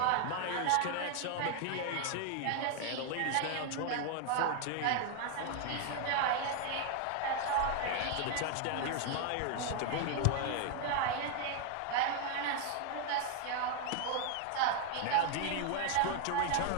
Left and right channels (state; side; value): different; both; correlation 0.00